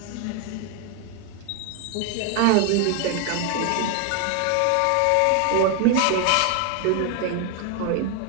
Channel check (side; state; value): both; different; correlation 0.01